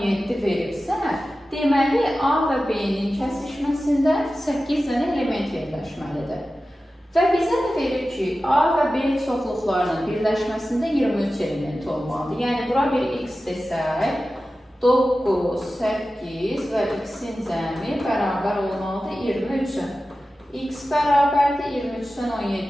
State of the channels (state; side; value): normal; both; correlation 0.94